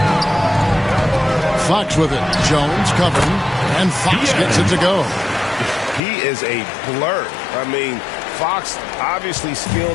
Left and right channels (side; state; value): right; drops out; at 6.0 s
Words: Fox with it. Jones covering. And Fox gets it to go. He is a blur. I mean, Fox obviously